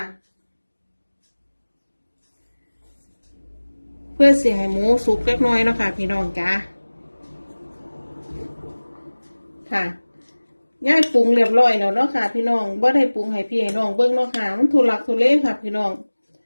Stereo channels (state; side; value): inverted; both; correlation -1.00